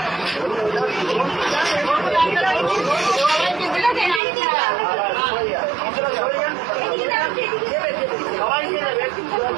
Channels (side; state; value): left; drops out; at 4.2 s